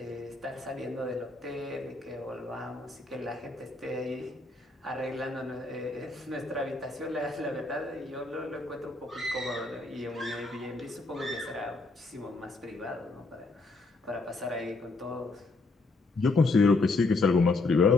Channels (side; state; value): right; quieter; 3.4 dB